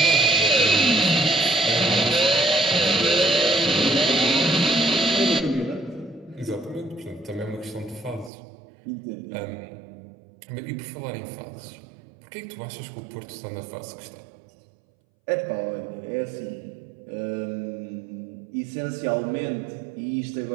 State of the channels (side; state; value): left; drops out; at 8.3 s